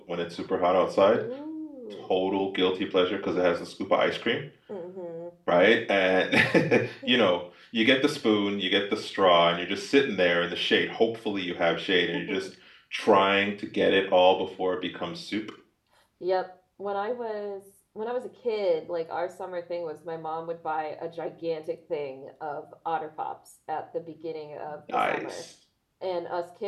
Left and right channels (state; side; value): identical; both; correlation 1.00